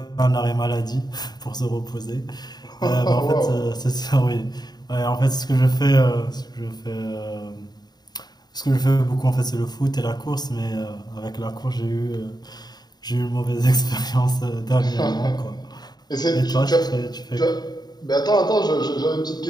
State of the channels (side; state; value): right; late; 0.20 ms